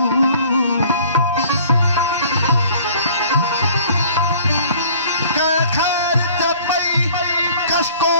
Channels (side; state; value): both; inverted; correlation -0.53